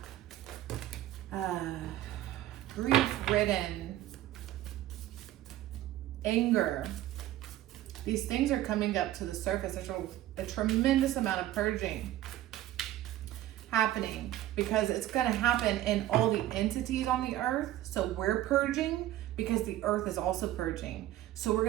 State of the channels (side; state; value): left; quieter; 14.1 dB